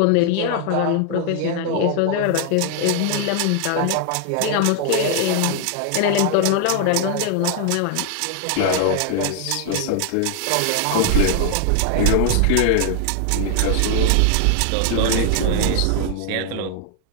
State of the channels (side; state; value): both; different; correlation 0.00